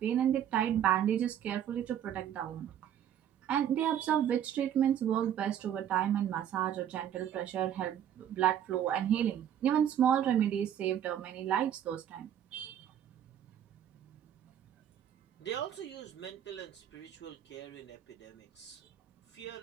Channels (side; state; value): left; quieter; 10.0 dB